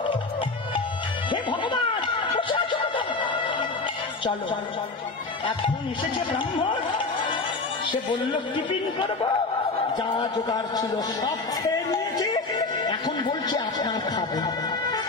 হে ভগবান, চলো এখন এসেছে ব্রাহ্মণ। সে বলল টিফিন করবো, যা জোগাড় ছিল সব খেয়ে নিয়েছে, এখন বলছে আপনার খাবে।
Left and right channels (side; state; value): right; quieter; 3.7 dB